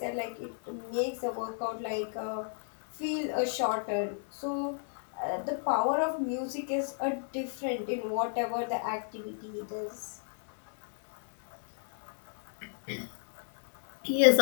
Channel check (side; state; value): right; silent; digital silence